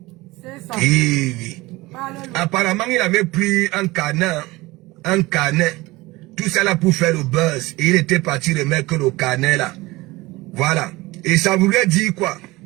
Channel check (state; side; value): quieter; left; 20.8 dB